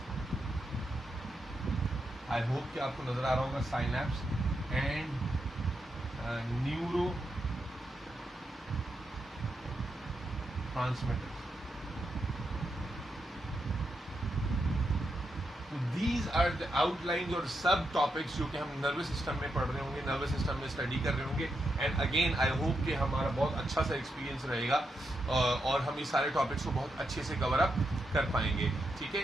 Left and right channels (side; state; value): both; normal; correlation 0.84